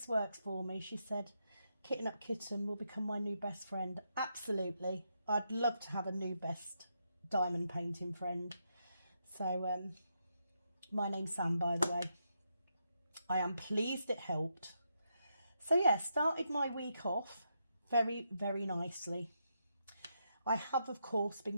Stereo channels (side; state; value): both; inverted; correlation -0.82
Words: works for me, she said, Kitten Up Kitten will become my new best friend. Absolutely. I'd love to have a new best diamond painting friend. So my name's Sam, by the way. I am pleased it helped. So yeah, started my week off very nicely. I have of course